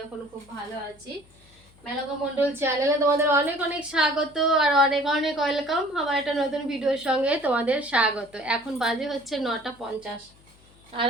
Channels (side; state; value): left; noise; hum, 28 dB below the sound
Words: এখনো খুব ভালো আছি। মেনকা মণ্ডল চ্যানেলে তোমাদের অনেক অনেক স্বাগত আর অনেক অনেক ওয়েলকাম। আমার একটা নতুন ভিডিওর সঙ্গে তোমাদের স্বাগত। এখন বাজে হচ্ছে 9:50, আর